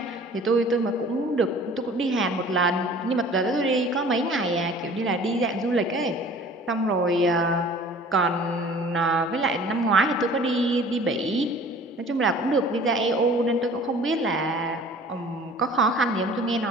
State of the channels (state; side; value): normal; both; correlation 0.48